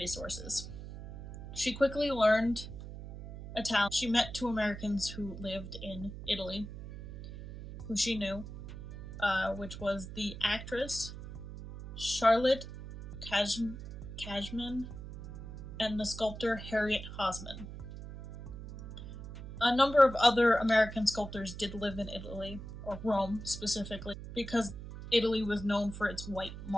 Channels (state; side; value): noise; right; hum, 11 dB below the sound